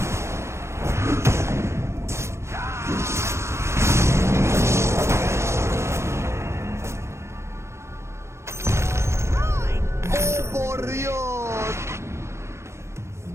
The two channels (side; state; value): left; late; 0.13 ms